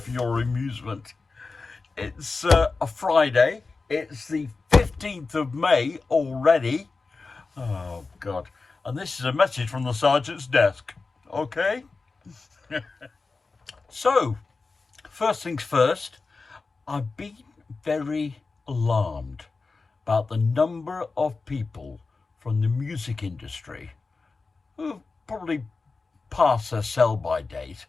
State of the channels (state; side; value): quieter; right; 4.1 dB